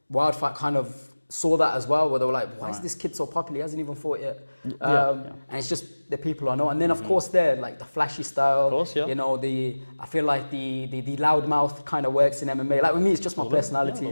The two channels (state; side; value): inverted; both; correlation -1.00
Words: Wild Fight kind of saw that as well, where they were like, why is this kid so popular? He hasn't even fought yet. And it's just the people I know. And then, of course, they're like the flashy style. Of course, you know, I feel like the loudmouth kind of works in MMA. Like, with me, it's just my personality.